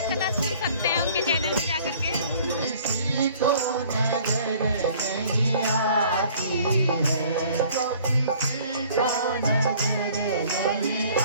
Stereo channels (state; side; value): inverted; both; correlation -0.54